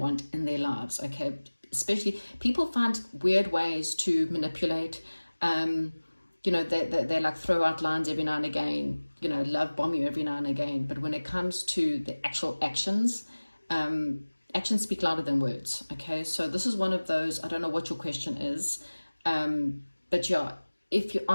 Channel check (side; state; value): both; inverted; correlation -1.00